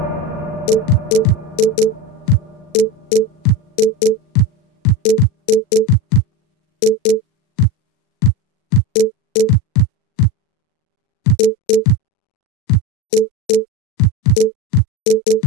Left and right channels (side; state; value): right; late; 39 ms